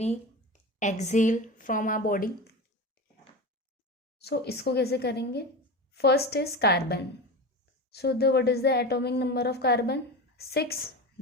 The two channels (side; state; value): both; normal; correlation 0.25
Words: exhale from our body। so इसको कैसे करेंगे? First is carbon. so the what is the atomic number of carbon? 6,